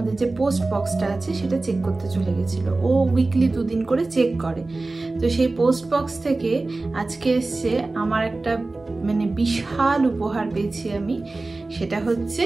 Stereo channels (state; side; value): quieter; left; 3.3 dB